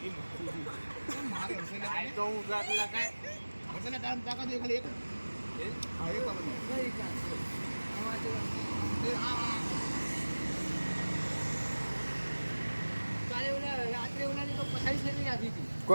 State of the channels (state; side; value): inverted; both; correlation -1.00